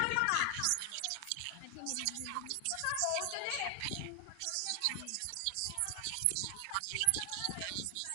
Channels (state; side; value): different; both; correlation 0.00